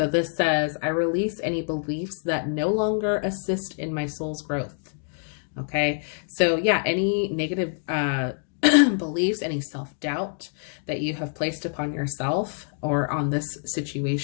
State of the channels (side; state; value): right; silent; 61 dB below the other